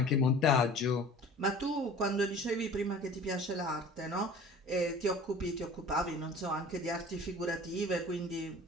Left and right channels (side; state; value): both; normal; correlation 0.43